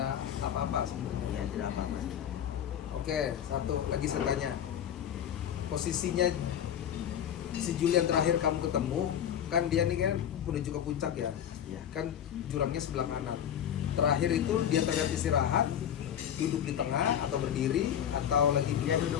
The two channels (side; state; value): right; quieter; 9.6 dB